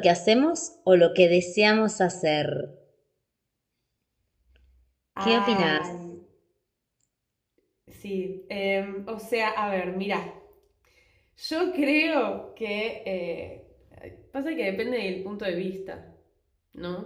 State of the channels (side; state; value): both; identical; correlation 1.00